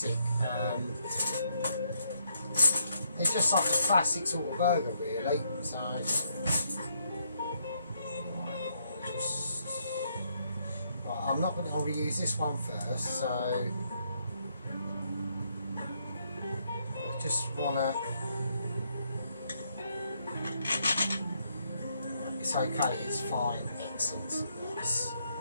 It's just like a classic sort of burger, really. So, right, I'm not going to use this one first. So, I just want to. It's okay. It's fine. Excellent. Nice.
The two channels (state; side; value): inverted; both; correlation -0.74